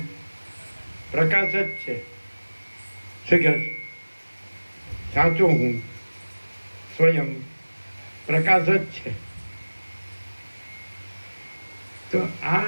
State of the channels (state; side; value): inverted; both; correlation -1.00